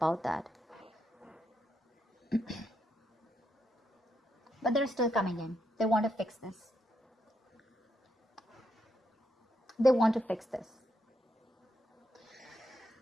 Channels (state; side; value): normal; both; correlation 0.80